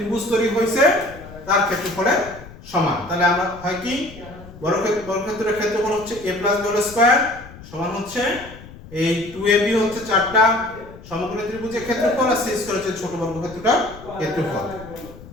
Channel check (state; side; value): noise; left; rumble, 18 dB below the sound